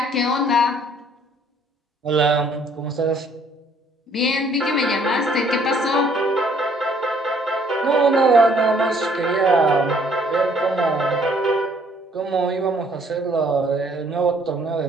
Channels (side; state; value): both; normal; correlation 0.62